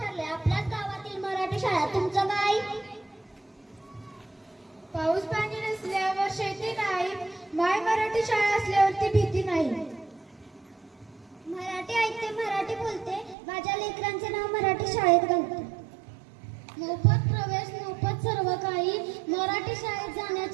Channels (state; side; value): drops out; left; at 13.4 s